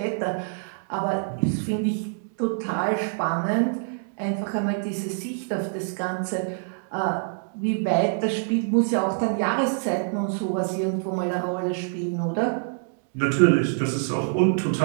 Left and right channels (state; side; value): silent; left; digital silence